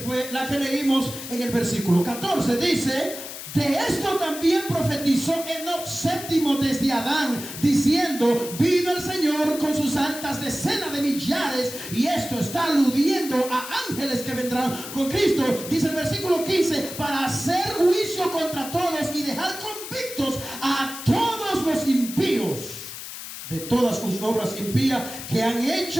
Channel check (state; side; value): noise; left; hiss, 10 dB below the sound